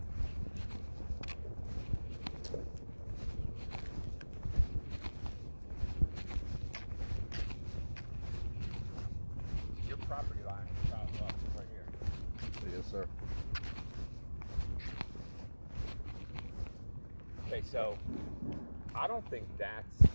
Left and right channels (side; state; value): both; inverted; correlation -1.00